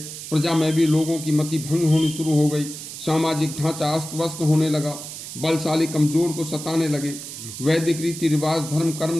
प्रजा में भी लोगों की मति भंग होनी शुरू हो गई। सामाजिक ढांचा अस्त व्यस्त होने लगा। बलशाली कमजोर को सताने लगे। वैदिक रीति रिवाज धर्म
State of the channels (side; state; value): right; noise; hiss, 10 dB below the sound